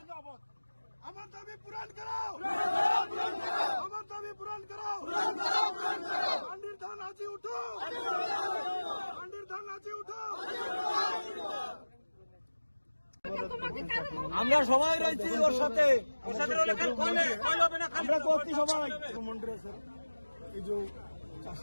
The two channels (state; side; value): inverted; both; correlation -1.00